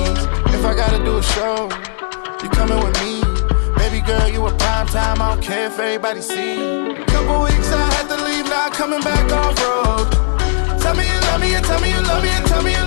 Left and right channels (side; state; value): right; silent; digital silence